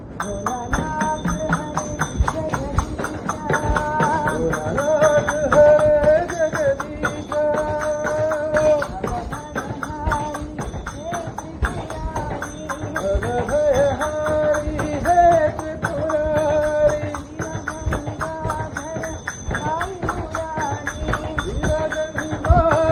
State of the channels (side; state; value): both; identical; correlation 1.00